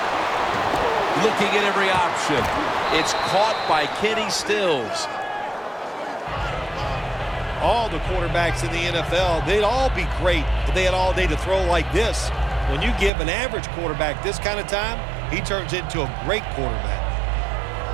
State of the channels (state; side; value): drops out; left; at 13.1 s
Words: Looking at every option. It's caught by Kenny Stills. All the quarterbacks in the NFL, they'd all be great if they had all day to throw like this. When you give an average quarterback this kind of time, he turns into a great quarterback.